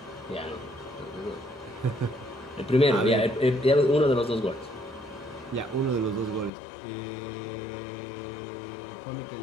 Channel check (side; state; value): right; drops out; at 6.5 s